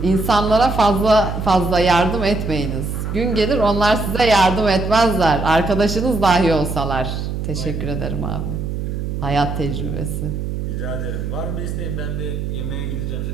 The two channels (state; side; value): noise; right; hum, 4 dB below the sound